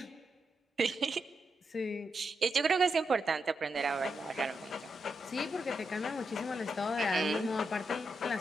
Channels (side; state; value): both; normal; correlation 0.84